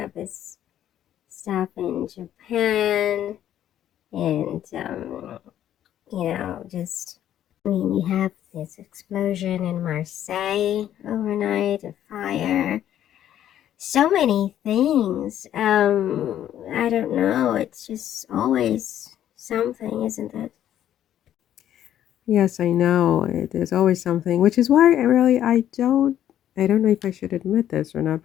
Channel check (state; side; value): quieter; right; 11.2 dB